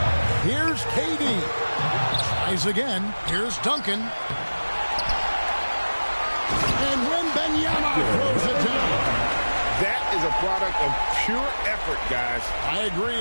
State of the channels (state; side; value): inverted; both; correlation -1.00